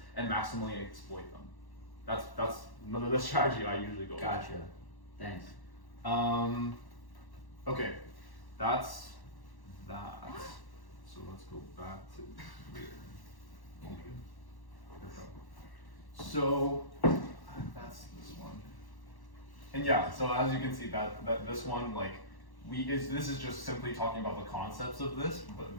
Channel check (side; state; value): right; late; 1.1 ms